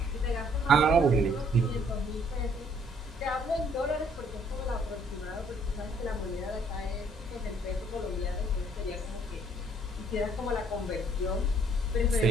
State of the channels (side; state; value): both; normal; correlation 0.63